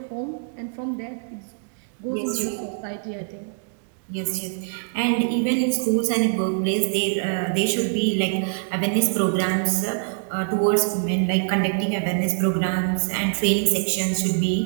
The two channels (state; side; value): silent; left; digital silence